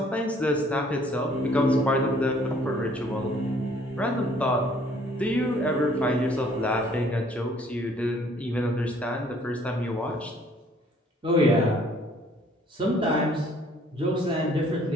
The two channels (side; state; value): both; normal; correlation 0.59